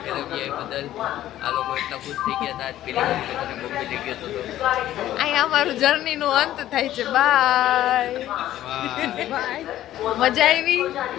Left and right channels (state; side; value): quieter; right; 13.2 dB